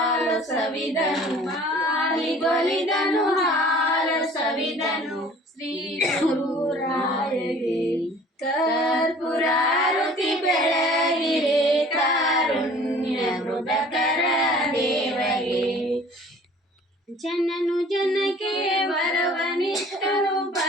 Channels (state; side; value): normal; both; correlation 0.49